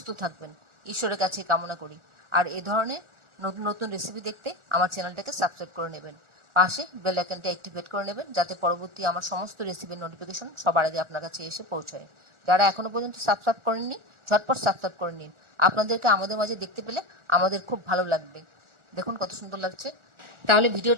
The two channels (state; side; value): late; left; 1.4 ms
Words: থাকবেন, ঈশ্বরের কাছে কামনা করি। আর এই ধরনের নতুন নতুন রেসিপি দেখতে আমার চ্যানেলটাকে সাবস্ক্রাইব করে নেবেন, পাশে বেল আইকনটা অ্যাক্টিভেট করে নেবেন, যাতে পরবর্তী আমার সমস্ত রেসিপির নোটিফিকেশন সবার আগে আপনার কাছে এসে পৌঁছায়। যারা এখনো পর্যন্ত সাবস্ক্রাইব করেননি, ঝটপট সাবস্ক্রাইব করে নিন। আপনাদেরকে আমাদের মাঝে দেখতে পেলে আমাদের খুব ভালো লাগবে। দেখুন কত সুন্দর লাগছে। তাহলে